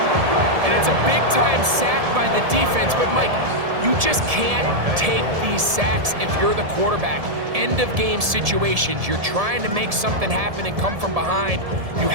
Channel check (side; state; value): left; late; 1.7 ms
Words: And it's a big-time sack by the defense, but Mike, you just can't take these sacks if you're the quarterback. End-of-game situations, you're trying to make something happen and come from behind. You